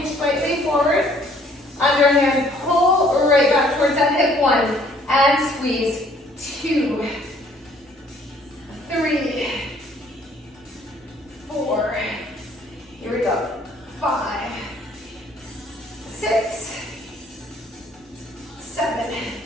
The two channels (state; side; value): normal; both; correlation 0.60